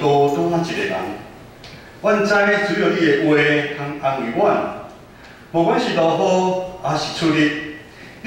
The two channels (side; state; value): both; identical; correlation 1.00